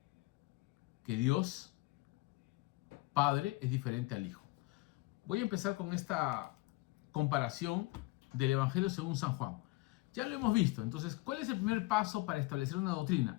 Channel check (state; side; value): quieter; right; 22.0 dB